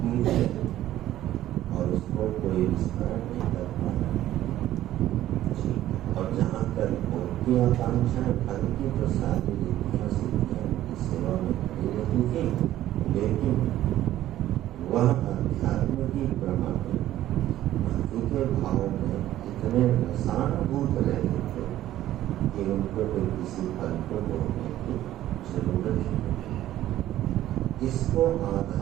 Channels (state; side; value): quieter; left; 13.5 dB